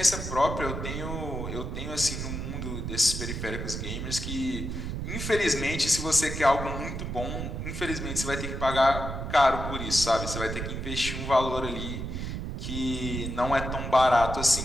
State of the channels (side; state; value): right; noise; rumble, 5 dB below the sound